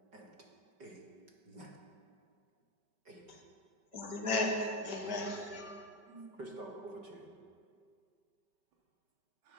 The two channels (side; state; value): left; late; 5.2 ms